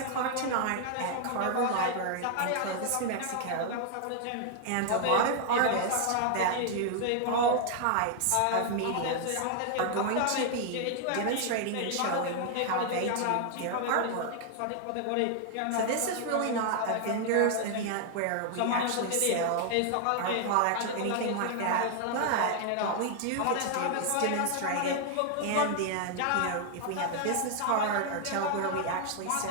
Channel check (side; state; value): both; different; correlation 0.00